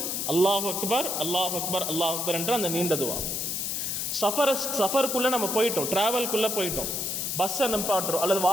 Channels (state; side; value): noise; left; hiss, 1 dB below the sound